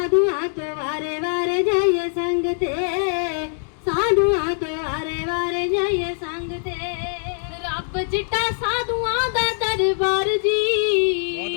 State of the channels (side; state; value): right; silent; 64 dB below the other